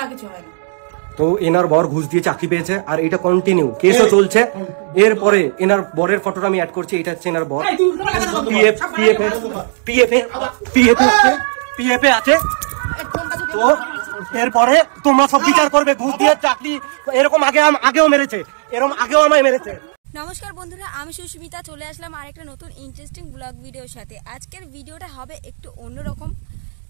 কিছু হয় না। তো এনার বর ঘুষ দিয়ে চাকরি পেয়েছে আর এটা কন্টিনিউ কেসও চলছে। এরপরে এনার বরের ফটোটা আমি অ্যাড করছি, এটা হচ্ছে এনার বর। পিএফ আছে। তো এরপরে তোমরা সব বিচার করবে, ঘুষ দিয়ে চাকরি এরকম আগেও মেরেছে, এরকম আগেও আমায় মেরেছে। নমস্কার বন্ধুরা, আমি সুস্মিতা, চলে আসলাম আরেকটা নতুন ইন্টারেস্টিং ব্লগ ভিডিওর সাথে। আজকের ভিডিওটা হবে একটু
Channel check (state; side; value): silent; left; digital silence